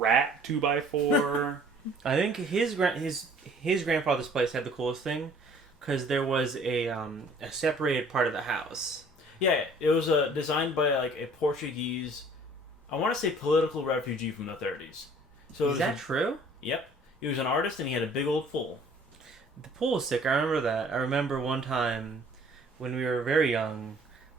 2x4. I think his grandfather's place had the coolest thing because there was a separated part of the house. Yeah, it was designed by like a Portuguese, I want to say political refugee from the 30s. So is that true? Yep. He was an artist and he had a big old pool. The pool was sick. I remember that. I remember one time when we were very young,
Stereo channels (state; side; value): normal; both; correlation 0.54